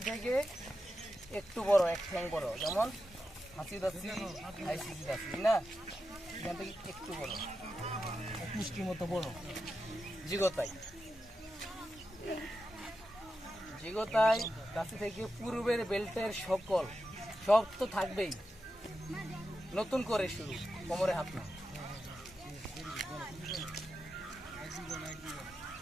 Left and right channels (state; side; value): normal; both; correlation 0.89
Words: থেকে একটু বড়, এক ঠ্যাং বড়, যেমন হাসি দাসি আইসিসি দাসি না, এখান থেকে একটু বড়, মিষ্টির মতো বড় জিগোতাই। জিগোতাই দাসি থেকে পূর্বের বেল্টের সকল সব তো থাকবেই, নতুন করে শুরু, কোমরে হাত না,